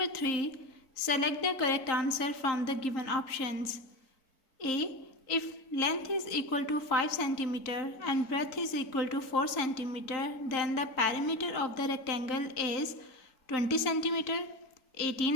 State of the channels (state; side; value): late; right; 3.8 ms